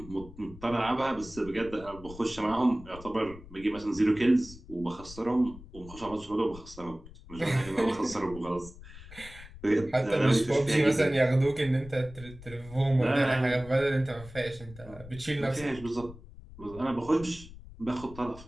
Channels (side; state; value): left; noise; rumble, 17 dB below the sound